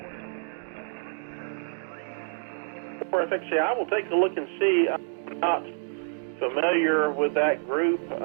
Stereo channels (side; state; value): left; silent; digital silence